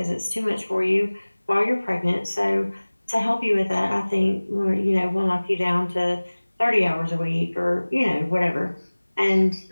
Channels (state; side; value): inverted; both; correlation -1.00